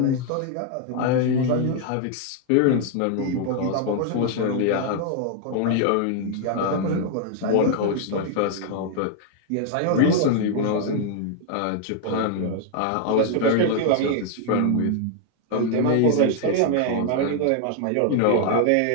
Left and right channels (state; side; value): different; both; correlation 0.00